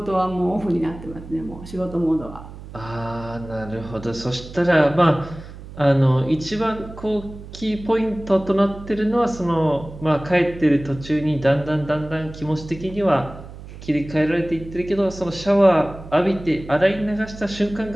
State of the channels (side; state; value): right; noise; hum, 15 dB below the sound